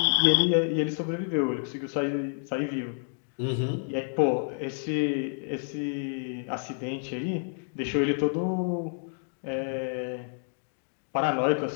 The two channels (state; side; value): silent; right; 59 dB below the other